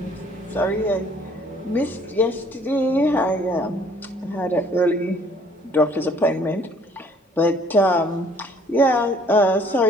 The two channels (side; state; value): both; normal; correlation 0.59